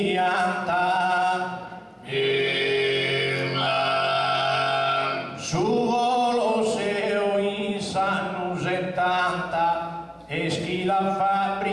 su Colosseo in sanno 70 e schi la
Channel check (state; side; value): identical; both; correlation 1.00